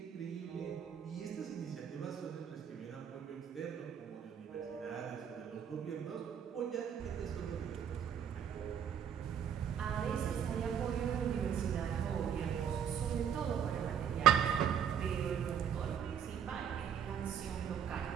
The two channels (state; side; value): quieter; left; 8.4 dB